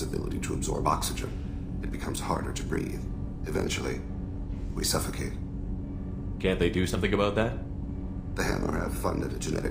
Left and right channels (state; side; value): identical; both; correlation 1.00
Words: ability to absorb oxygen. It becomes harder to breathe. Eventually, we suffocate. Can't they do something about that? The Hanar have funded a